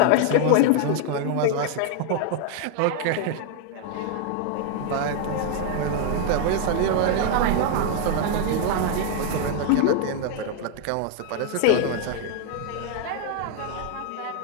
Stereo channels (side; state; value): both; different; correlation 0.00